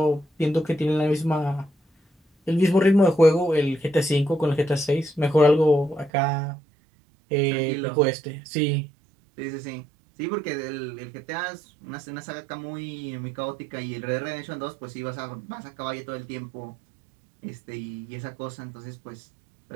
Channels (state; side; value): drops out; left; at 6.1 s